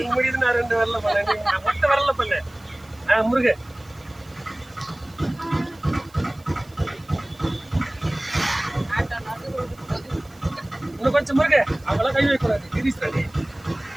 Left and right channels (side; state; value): right; noise; hiss, 28 dB below the sound